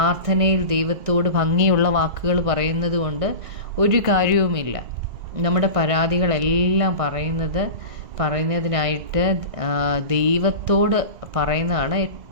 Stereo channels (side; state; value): left; late; 2.0 ms